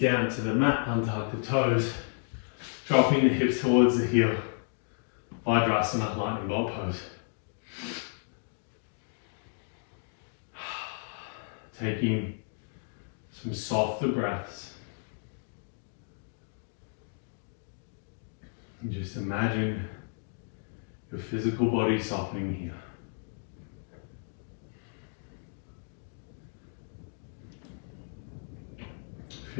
to the mat, untuck the toes, dropping the hips towards the heel. Vajrasana, lightning bolt pose. Taking some softer breaths. And just imagine your physical body softening here.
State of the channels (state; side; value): silent; right; 56 dB below the other